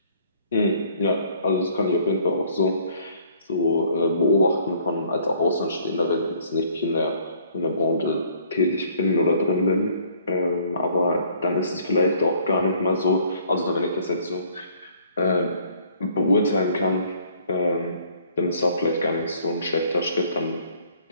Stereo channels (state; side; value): inverted; both; correlation -0.59